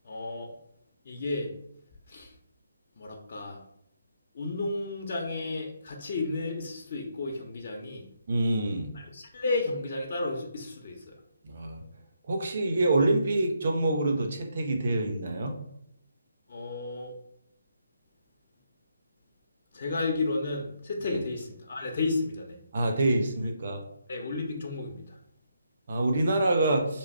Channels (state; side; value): inverted; both; correlation -0.77